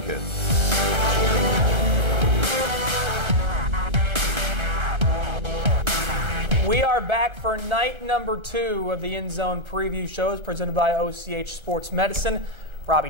We are back for night number 2 of the End Zone Preview Shows presented by OCH Sports Medicine. Robbie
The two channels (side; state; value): left; late; 1.3 ms